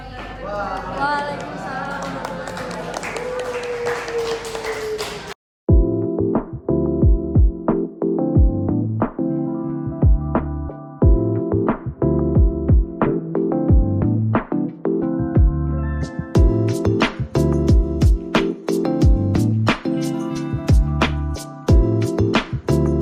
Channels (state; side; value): identical; both; correlation 1.00